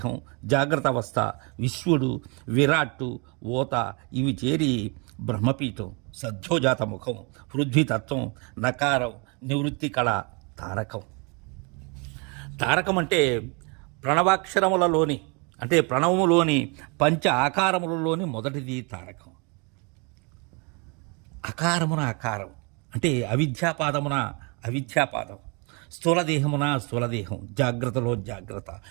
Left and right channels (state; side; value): quieter; left; 32.4 dB